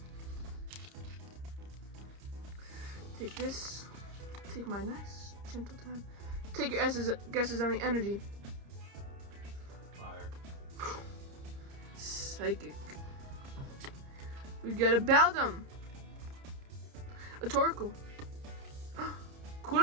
Take this. Take my nice, gentle time. Take your guesses on the energy. Fire. Psychic. We got a Beldum. A Torkoal.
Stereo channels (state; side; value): late; left; 30 ms